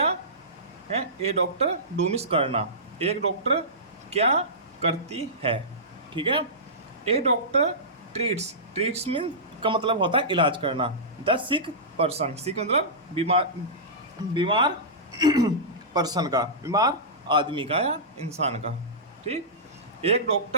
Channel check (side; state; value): both; normal; correlation -0.18